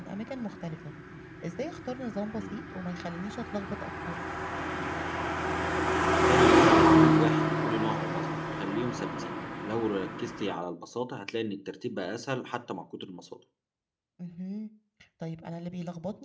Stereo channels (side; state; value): both; identical; correlation 1.00